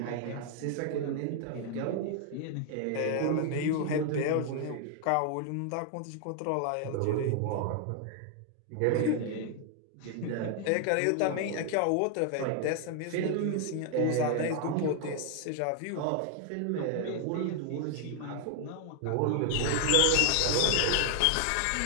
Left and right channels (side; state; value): both; different; correlation 0.00